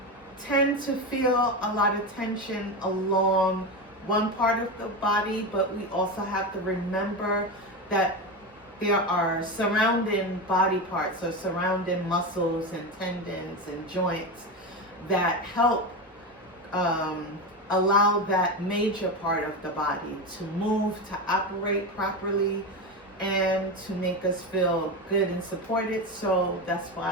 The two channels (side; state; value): both; normal; correlation 0.18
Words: tend to feel a lot of tension along one part of the body, but we also have to remember that there are surrounding body parts or surrounding muscles and tendons and joints that help allow that major part of the body to move, to operate properly, and to make us feel good and supported. So that's